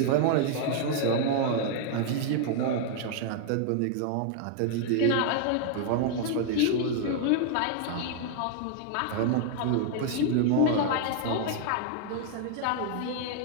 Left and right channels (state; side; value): different; both; correlation 0.00